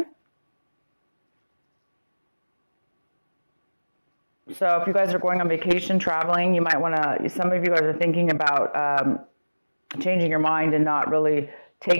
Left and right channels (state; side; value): inverted; both; correlation -1.00